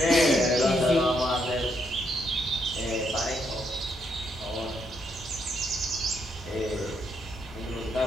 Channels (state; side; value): normal; both; correlation 0.76